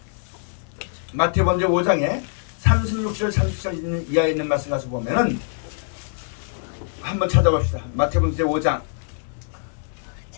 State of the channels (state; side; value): silent; right; 63 dB below the other